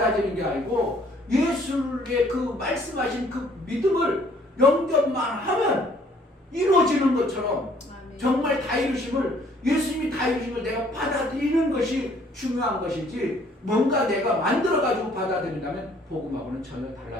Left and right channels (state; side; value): normal; both; correlation 0.60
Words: 게 아니고 예수의 그 말씀하신 그 믿음을 영접만 하면 이루어지는 것처럼 정말 다 이루심을, 예수님이 다 이루심을 내가 받아들이는 것이 중요한 것이지, 뭔가 내가 만들어가지고 받아들인다면 복음하고는 전혀